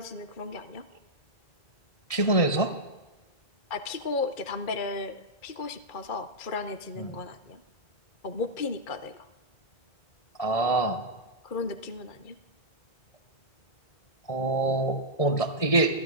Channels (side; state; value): right; late; 1.7 ms